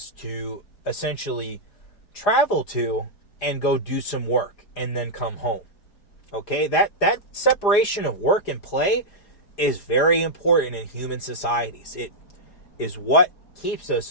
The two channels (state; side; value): late; right; 5.0 ms